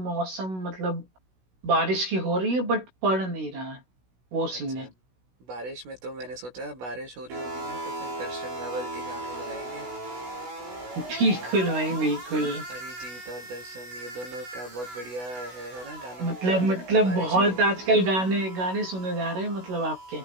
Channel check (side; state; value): left; late; 16 ms